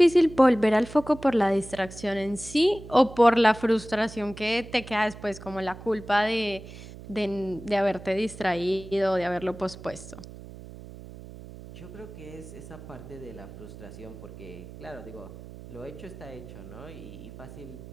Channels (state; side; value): noise; right; hum, 15 dB below the sound